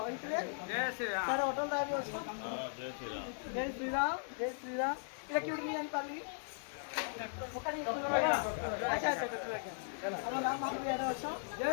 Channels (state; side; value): silent; right; 52 dB below the other